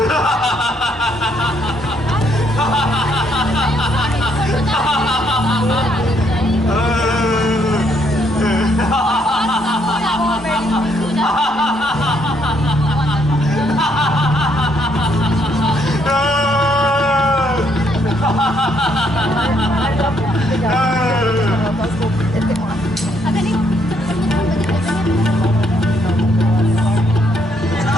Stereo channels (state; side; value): normal; both; correlation 0.71